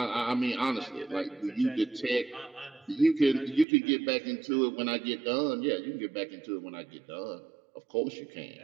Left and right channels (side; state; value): left; drops out; at 3.7 s